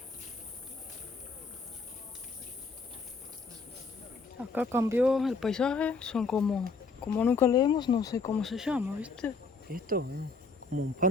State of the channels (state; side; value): quieter; right; 4.2 dB